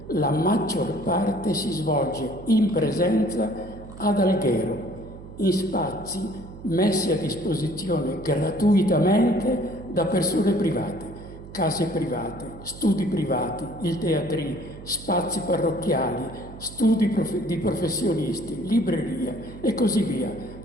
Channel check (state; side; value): noise; right; hum, 15 dB below the sound